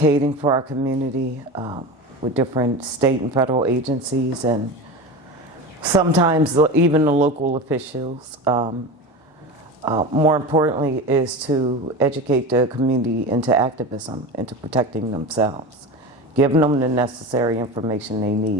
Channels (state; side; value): normal; both; correlation 0.27